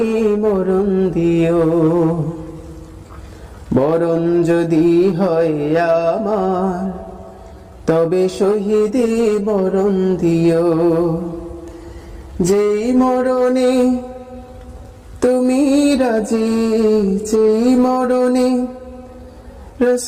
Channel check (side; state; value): both; identical; correlation 1.00